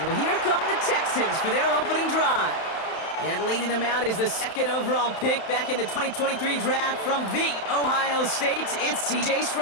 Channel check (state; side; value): late; right; 31 ms